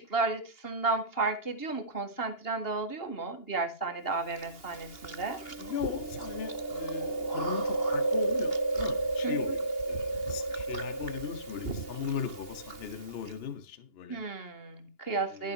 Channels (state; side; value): late; right; 2.8 ms